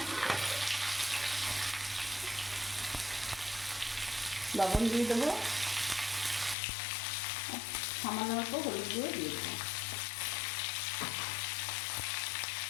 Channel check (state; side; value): drops out; right; at 6.6 s